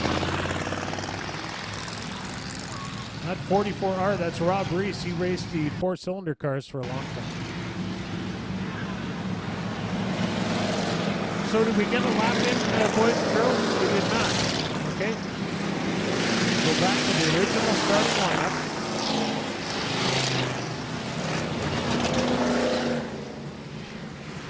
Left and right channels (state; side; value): identical; both; correlation 1.00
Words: Not 44R, that's Rob Reese. He raced the 4-cylinder cars for a long time. So did we get a lap in, boys and girls? We did not. Okay. Go back to the original starting lineup.